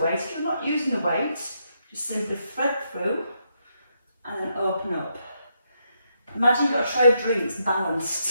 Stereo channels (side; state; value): both; inverted; correlation -0.79